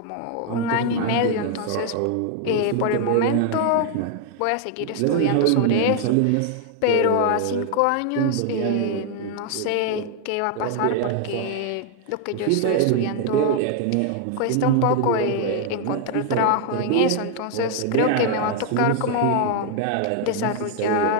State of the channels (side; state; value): both; different; correlation 0.00